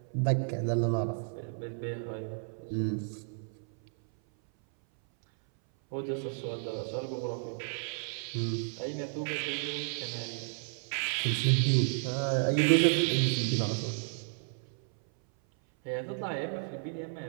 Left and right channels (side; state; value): left; silent; 56 dB below the other